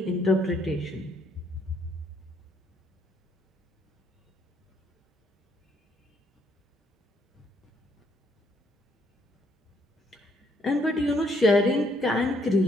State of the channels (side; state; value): both; normal; correlation 0.69